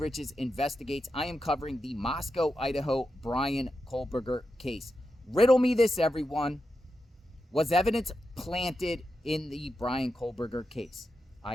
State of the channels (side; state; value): both; normal; correlation 0.88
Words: Investigates. I am covering the Moscow, Idaho Bryan Kohberger case. Riddle me this, everyone. Was evidence planted in the Bryan Kohberger case?